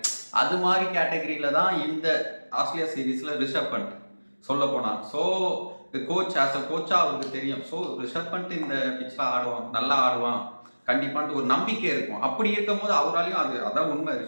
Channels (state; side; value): inverted; both; correlation -1.00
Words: அது மாதிரி கேட்டகரியில் தான் இந்த ஆஸ்திரேலியா சீரீஸில் ரிஷப் பண்ட் சொல்ல போனால். ஸோ கோச் ஆஸ் அ கோச்சாக அவருக்கு தெரியும். ஸோ ரிஷப் பண்ட் இந்த பிச்சில் ஆடுவான், நல்லா ஆடுவான் கண்டிப்பான்ட்டு ஒரு நம்பிக்கை இருக்கும். அப்படி இருக்கும் போது அவராலையும் அதான் உண்மை,